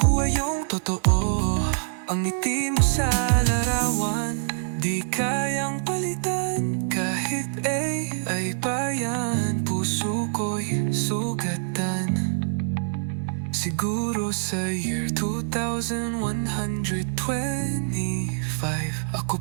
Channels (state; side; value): silent; left; digital silence